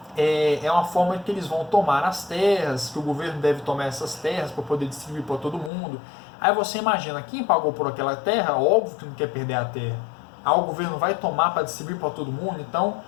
É uma forma que eles vão tomar as terras, que o governo deve tomar essas terras para poder distribuir para todo mundo. Aí você imagina, quem pagou por aquela terra, óbvio que não quer perder a terra. Aí o governo vai tomar para distribuir para todo mundo, então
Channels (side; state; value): right; drops out; at 5.7 s